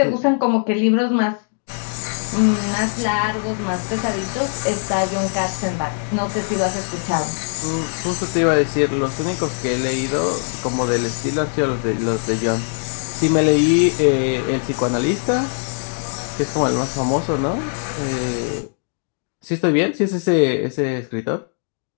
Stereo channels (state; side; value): silent; right; 65 dB below the other